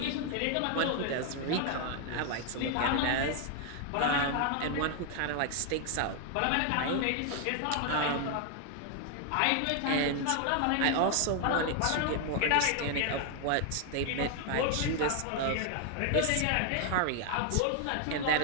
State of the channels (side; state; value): both; different; correlation 0.00